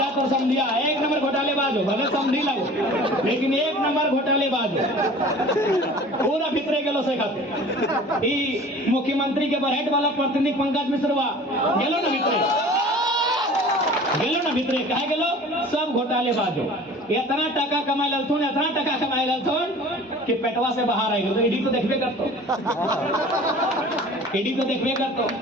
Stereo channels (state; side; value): normal; both; correlation 0.44